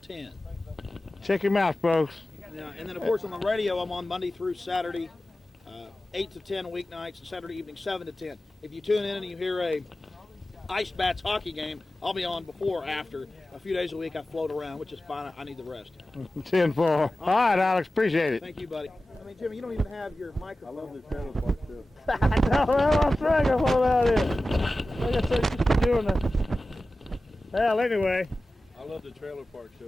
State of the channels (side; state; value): both; normal; correlation 0.95